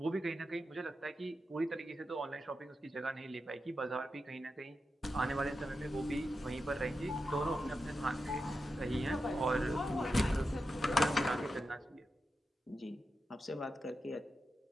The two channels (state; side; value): normal; both; correlation 0.89